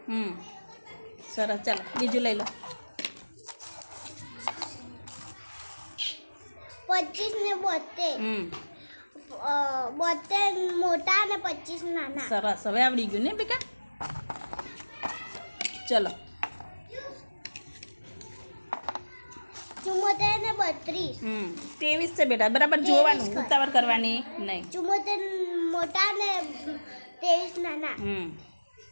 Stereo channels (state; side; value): inverted; both; correlation -1.00